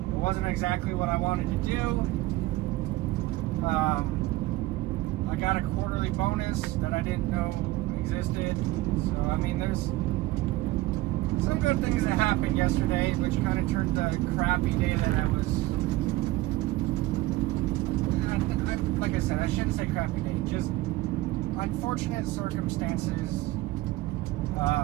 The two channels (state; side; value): quieter; left; 17.8 dB